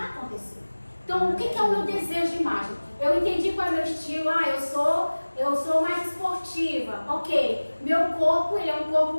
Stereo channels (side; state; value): both; inverted; correlation -1.00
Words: acontecer. Então, o que é o meu desejo de imagem? Eu entendi qual é o meu estilo. Eu sou mais esportiva. Ok. Meu corpo, ele é um